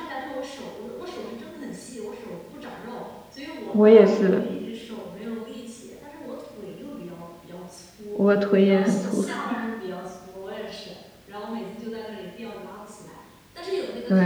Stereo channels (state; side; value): identical; both; correlation 1.00